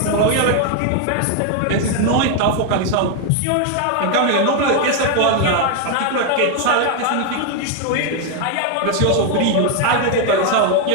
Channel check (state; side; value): different; both; correlation 0.00